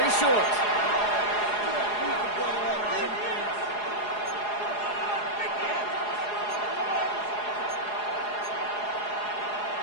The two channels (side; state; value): right; late; 4.8 ms